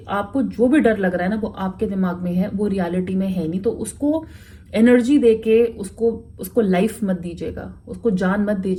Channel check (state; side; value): identical; both; correlation 1.00